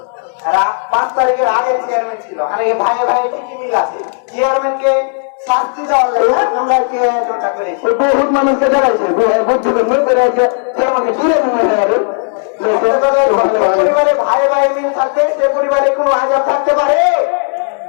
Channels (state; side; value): silent; right; 66 dB below the other